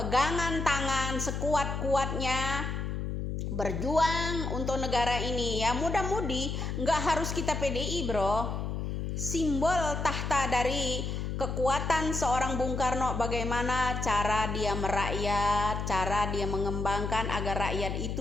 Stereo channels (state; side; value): noise; left; hum, 3 dB below the sound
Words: tangan sekuat-kuatnya berjuang untuk negara ini, ya. Mudah-mudi nggak harus kita PDI bro. Simbol tahta dari kekuatan seorang Bung Karno, bagaimana cara dia merakyat, cara dia mengembangkan agar rakyat